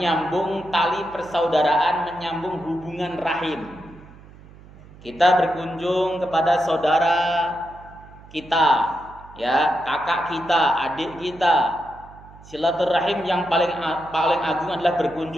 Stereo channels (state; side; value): noise; right; hum, 21 dB below the sound